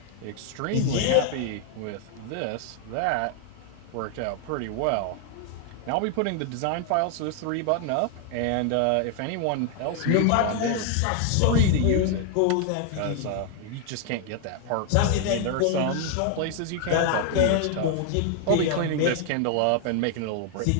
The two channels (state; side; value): different; both; correlation 0.00